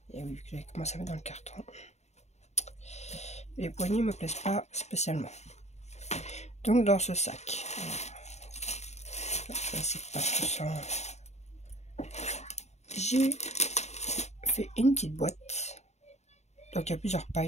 Et oui, j'ai commencé à mettre dans le carton. Les poignets me plaisent pas spécialement. Donc dans ce sac, c'est pas tout ça. J'ai fait une petite boîte. Donc il y a plusieurs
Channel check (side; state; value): right; late; 0.32 ms